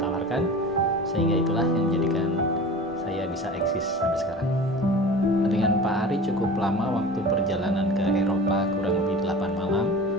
tawarkan, sehingga itulah yang menjadikan saya bisa eksis sampai sekarang. Dengan Pak Ari cukup lama waktu perjalanan ke Eropa, kurang lebih 8 malam.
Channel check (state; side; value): normal; both; correlation 0.37